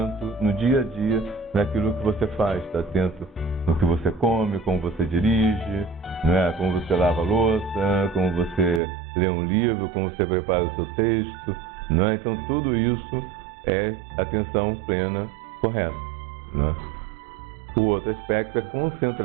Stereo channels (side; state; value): left; drops out; at 8.8 s